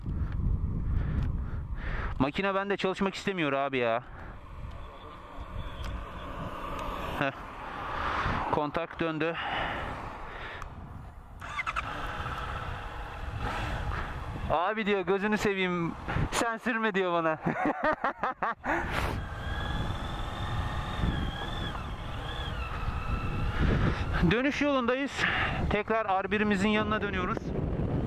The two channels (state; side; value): identical; both; correlation 1.00